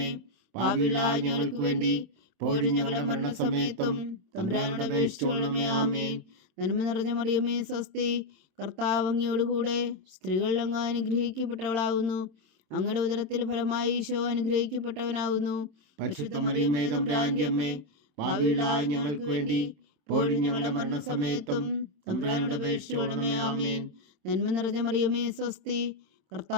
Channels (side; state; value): left; late; 26 ms